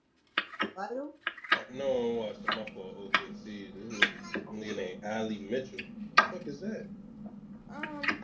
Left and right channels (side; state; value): both; identical; correlation 1.00